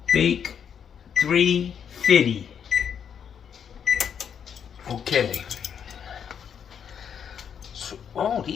Bake 350. Okay. So, oh,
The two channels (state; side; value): quieter; right; 7.9 dB